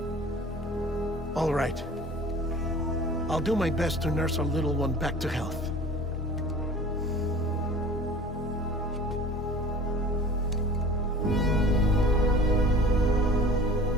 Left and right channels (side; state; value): both; normal; correlation 0.42